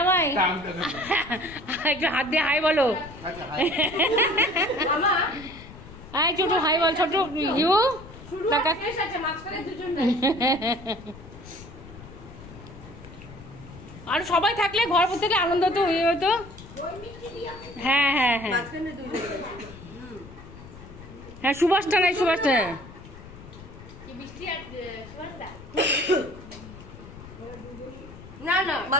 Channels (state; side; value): noise; left; rumble, 17 dB below the sound